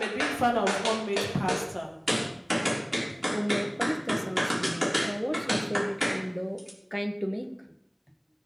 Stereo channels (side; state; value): both; identical; correlation 1.00